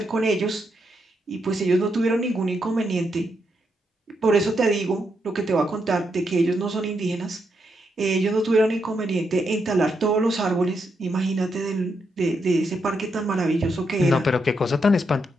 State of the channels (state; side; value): normal; both; correlation 0.81